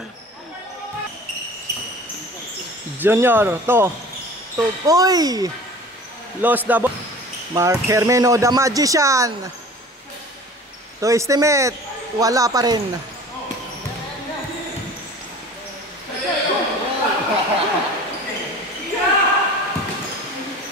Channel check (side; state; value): both; normal; correlation 0.43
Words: Junior, to. Uy. Lost the ball. Mark Hermeno, the Magician. To estimate, wala pa rin.